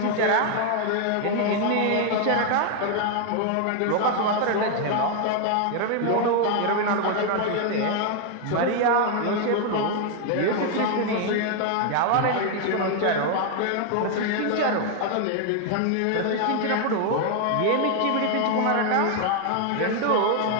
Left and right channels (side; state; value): both; different; correlation 0.00